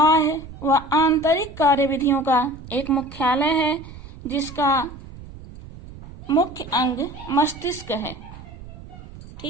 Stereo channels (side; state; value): right; noise; rumble, 16 dB below the sound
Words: व आंतरिक कार्यविधियों का एक मुख्यालय है, जिसका मुख्य अंग मस्तिष्क है।